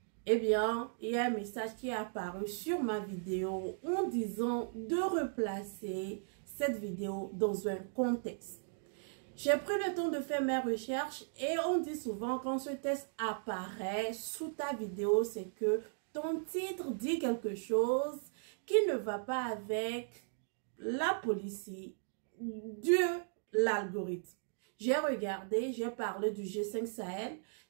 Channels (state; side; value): silent; left; digital silence